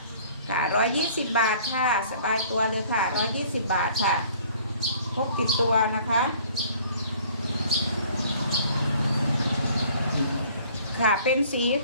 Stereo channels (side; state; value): both; inverted; correlation -0.54